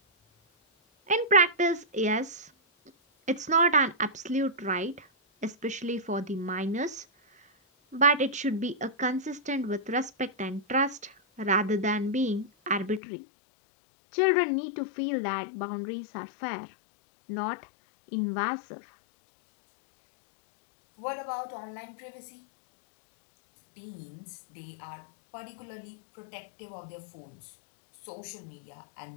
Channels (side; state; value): right; drops out; at 13.0 s